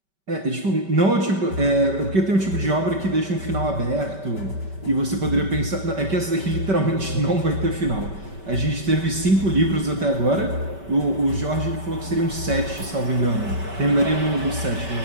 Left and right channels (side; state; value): left; late; 5.2 ms